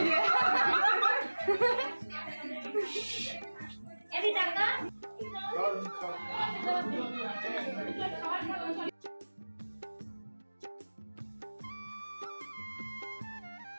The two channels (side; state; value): both; inverted; correlation -1.00